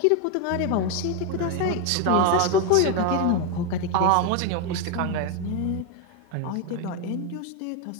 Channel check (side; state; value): both; different; correlation 0.01